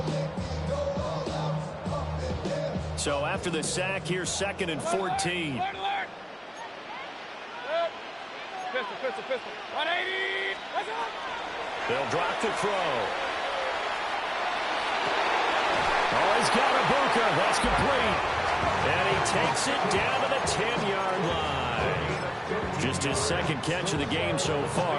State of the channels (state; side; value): identical; both; correlation 1.00